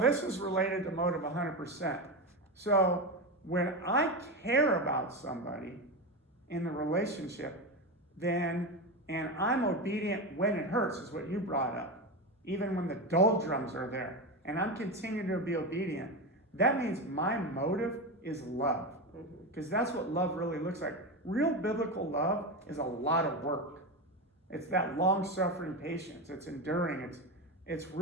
is related to motive 100%. So when I care about somebody in the relationship, and I'm obedient when it hurts, is what you brought up. Even when the doldrums are there, and I'm continuing to be obedient, that means my motive is love. Because that's what love really looks like. Real biblical love is a lot of work. It's that long-suffering patience. It's enduring. It's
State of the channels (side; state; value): both; normal; correlation 0.17